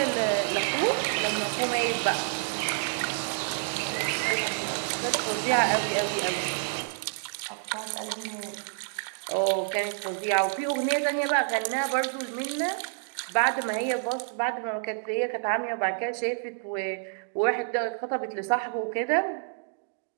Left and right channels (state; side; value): silent; left; digital silence